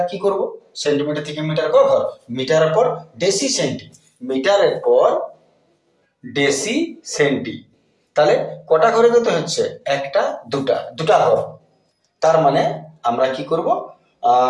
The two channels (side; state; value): both; identical; correlation 1.00